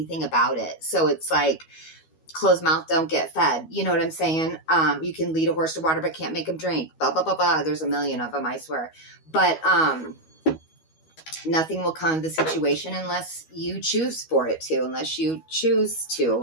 about it. So it's like, closed mouth don't get fed. You know what I'm saying? You can lead a horse to water, but can't make him drink. Blah, blah, blah, blah. There's a million of them, I swear. But nothing will come of the situation unless you choose for it to, unless you choose to.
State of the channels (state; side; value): late; right; 13 ms